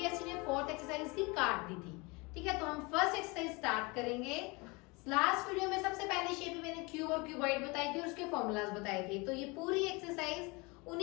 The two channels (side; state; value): right; quieter; 26.7 dB